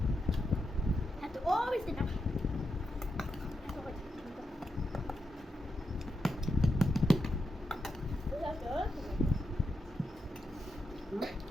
Have to always sit down. Hmm?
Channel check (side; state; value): both; normal; correlation 0.86